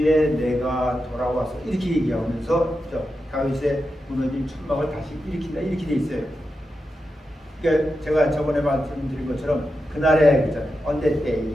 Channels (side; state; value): both; normal; correlation 0.89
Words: 내가 돌아와서 이렇게 얘기하면서 다윗의 무너진 천막을 다시 일으킨다 이렇게 돼 있어요. 그러니까 제가 저번에 말씀드린 것처럼 그날에 그잖아요. On that